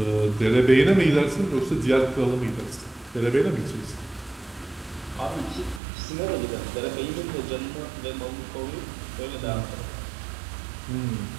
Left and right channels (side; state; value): left; drops out; at 5.8 s